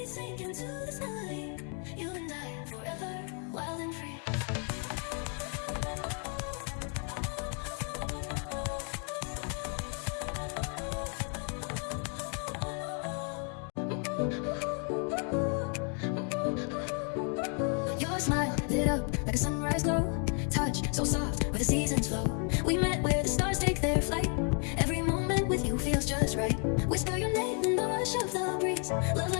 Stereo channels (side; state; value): right; quieter; 39.8 dB